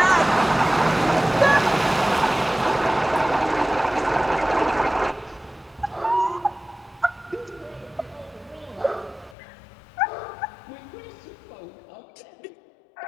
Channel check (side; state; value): right; drops out; at 9.3 s